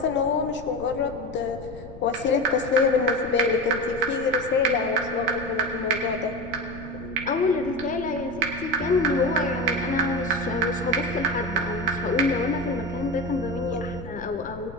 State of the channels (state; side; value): noise; left; rumble, 15 dB below the sound